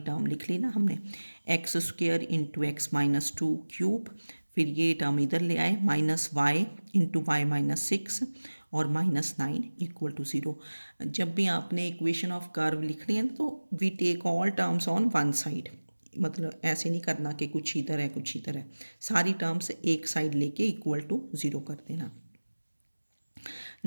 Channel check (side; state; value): both; inverted; correlation -1.00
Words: लिख ली ना हमने, x square into x minus 2 cube, फिर ये टर्म इधर ले आए minus y into y minus 6 और माइनस 9 इक्वल टू 0। जब भी आपने इक्वेशन ऑफ कर्व लिखनी है तो we take all terms on one side, मतलब ऐसे नहीं करना कि कुछ इधर है कुछ इधर है, सारी टर्म्स एक साइड लेके इक्वल टू 0 कर देना।